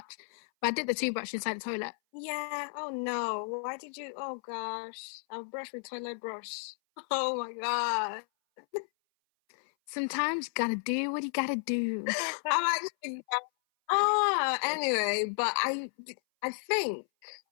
But I dipped the toothbrush inside the toilet. Yeah. Oh, no. Why did you? Oh, gosh. I'll brush with toilet brush. Oh, my God. Sometimes you gotta do what you gotta do. I'm actually... anyway, but I think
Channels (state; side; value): silent; right; 56 dB below the other